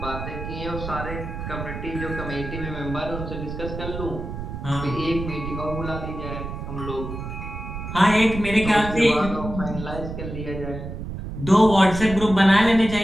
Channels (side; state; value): right; noise; rumble, 7 dB below the sound